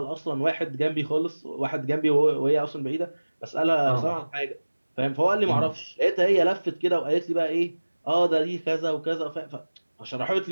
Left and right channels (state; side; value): inverted; both; correlation -1.00